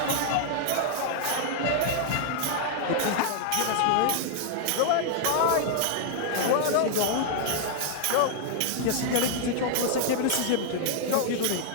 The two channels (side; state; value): both; different; correlation -0.01